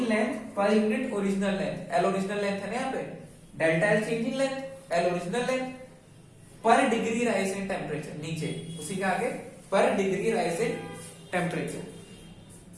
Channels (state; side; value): identical; both; correlation 1.00